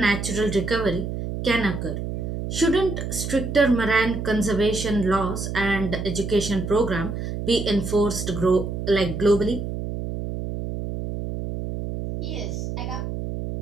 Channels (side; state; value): right; noise; hum, 5 dB below the sound